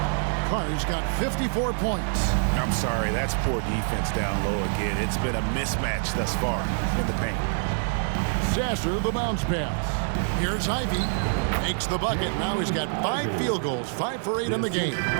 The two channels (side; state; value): left; silent; digital silence